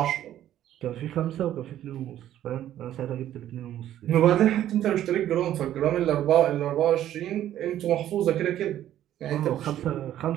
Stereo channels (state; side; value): quieter; left; 12.0 dB